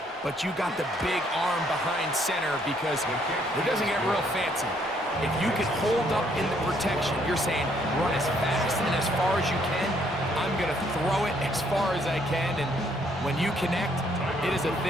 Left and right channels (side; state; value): both; normal; correlation 0.68